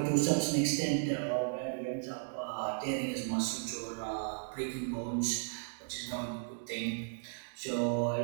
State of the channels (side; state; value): left; silent; digital silence